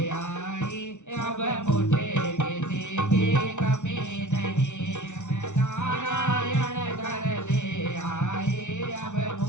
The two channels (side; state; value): right; late; 0.84 ms